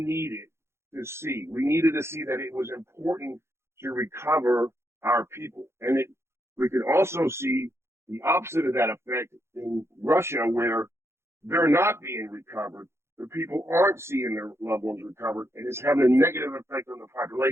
to see. We needed to see that it was important to recover our people. And we could also see the opposite of that effect in Russia, where they're not being recovered. The people aren't seeing their loved ones recovered, and it's having a negative effect on the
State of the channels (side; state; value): left; late; 0.13 ms